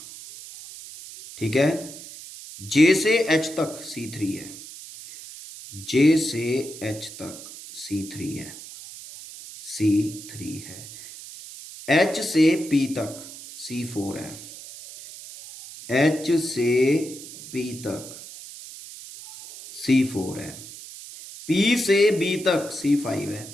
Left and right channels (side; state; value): right; noise; hiss, 14 dB below the sound